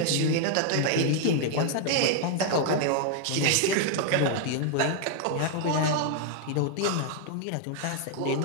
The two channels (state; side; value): different; both; correlation 0.00